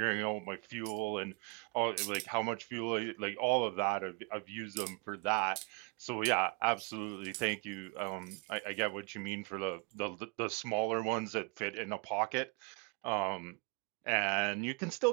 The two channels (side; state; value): left; quieter; 30.3 dB